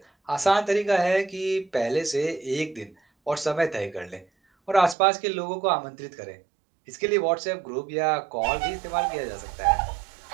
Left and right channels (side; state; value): left; drops out; at 5.0 s